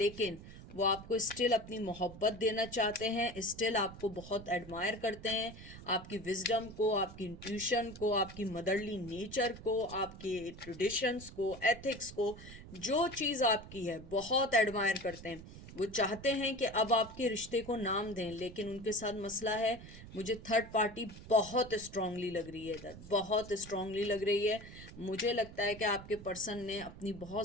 वो आपको स्टिल अपनी मोहब्बत देना चाहते हैं, स्टिल आपको बहुत एडमायर करते हैं, आपकी विजडम को, आपकी इंट्यूशन को, आपकी मदरली नेचर को, आपके ट्रेडिशंस को, एथिक्स को, जो चीज़ आपकी है बहुत एडमायर करते हैं। वो चाहते हैं कि अब आपके रिश्ते को नाम दें, लेकिन उनके साथ मसला है, मुझे थर्ड पार्टी बहुत स्ट्रांगली लग रही है इधर, बहुत स्ट्रांगली लग रही है। मुझे लगता है कि आपके पर्सन ने अपनी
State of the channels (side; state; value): right; noise; rumble, 15 dB below the sound